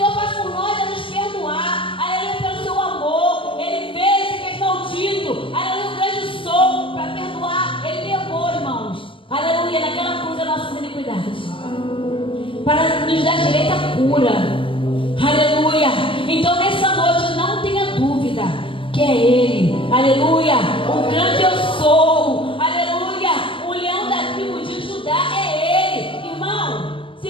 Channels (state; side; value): late; right; 0.25 ms